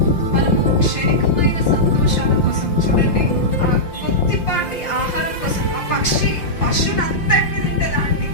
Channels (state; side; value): late; right; 5.7 ms